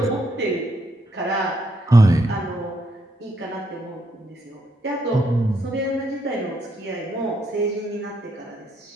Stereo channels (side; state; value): both; normal; correlation 0.75